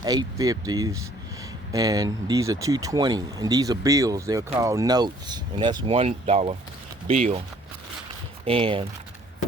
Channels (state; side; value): normal; both; correlation 0.58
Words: 8 50s, and these are 220, and these are bills. They're called notes, and that's $1 bill. And